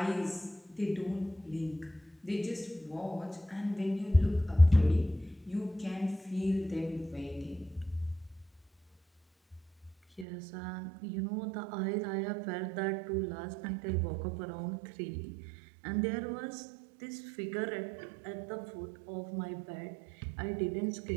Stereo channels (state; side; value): drops out; left; at 10.2 s